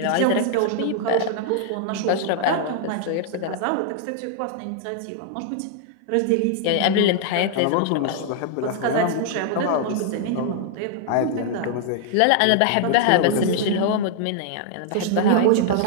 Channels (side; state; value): both; different; correlation 0.00